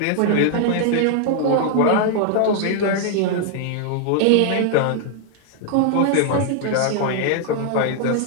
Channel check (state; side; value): different; both; correlation 0.00